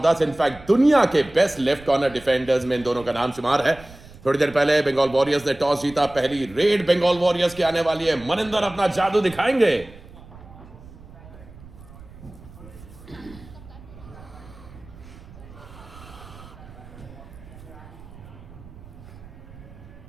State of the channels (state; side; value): noise; right; rumble, 19 dB below the sound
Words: 10। इनफैक्ट दुनिया के बेस्ट लेफ्ट कॉर्नर डिफेंडर्स में इन दोनों का नाम शुमार है। थोड़ी देर पहले बंगाल वॉरियर्स ने टॉस जीता, पहली रेड बंगाल वॉरियर्स की आने वाली है। मनिंदर अपना जादू दिखाएंगे।